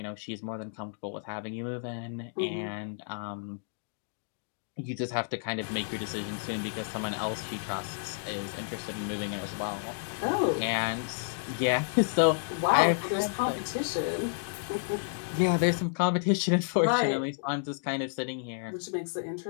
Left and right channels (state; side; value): silent; right; digital silence